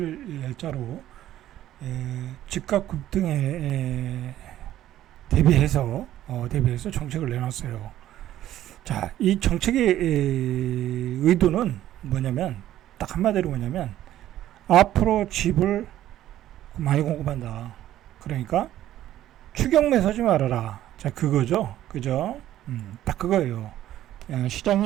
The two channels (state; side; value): quieter; left; 12.9 dB